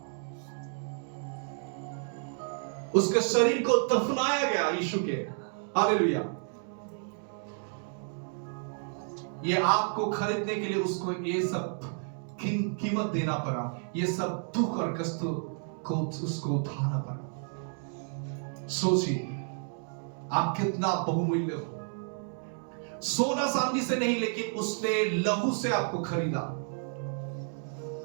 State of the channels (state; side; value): silent; left; 57 dB below the other